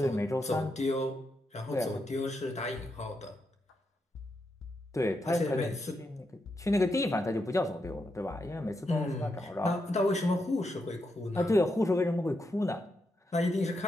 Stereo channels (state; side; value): normal; both; correlation 0.83